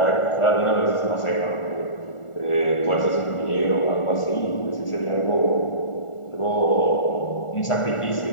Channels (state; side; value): late; right; 1.4 ms